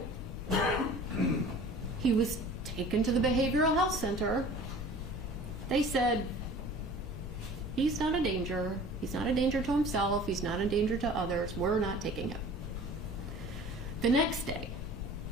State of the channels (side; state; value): both; normal; correlation 0.44